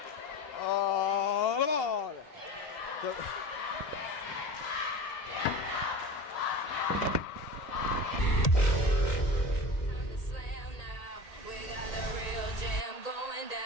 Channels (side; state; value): right; late; 1.8 ms